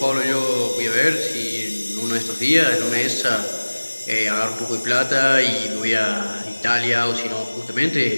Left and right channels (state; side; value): inverted; both; correlation -1.00